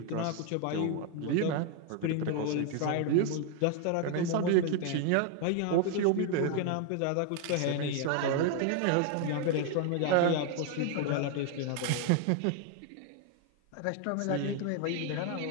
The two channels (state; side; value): different; both; correlation 0.00